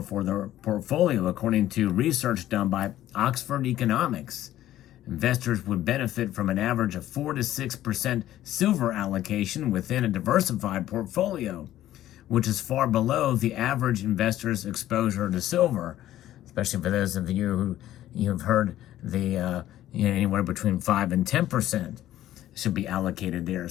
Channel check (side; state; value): right; quieter; 13.4 dB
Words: their portfolio, according to research done by Oxford Economics. Investors would benefit from an average of 4 to 6% silver allocation within a diversified portfolio, which is far below the average investor's exposure to silver, especially for those of you who have heard the anywhere between 5 and 10% should be allocated there.